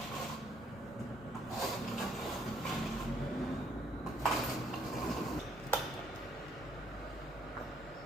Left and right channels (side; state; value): both; normal; correlation 0.67